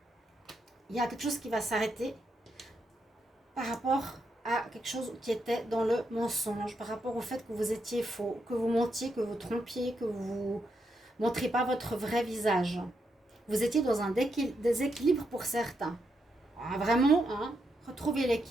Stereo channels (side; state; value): both; normal; correlation 0.81